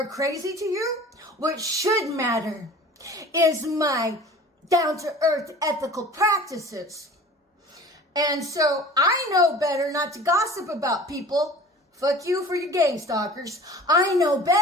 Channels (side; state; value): both; normal; correlation 0.42